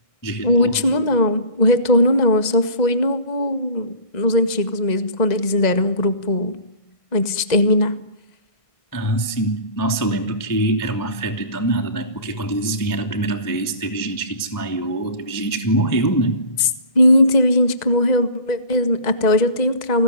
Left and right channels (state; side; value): late; right; 2.0 ms